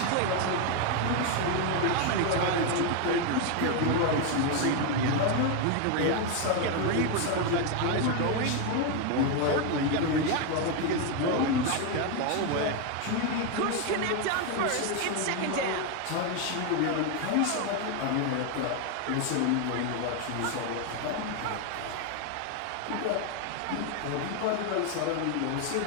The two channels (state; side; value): different; both; correlation 0.01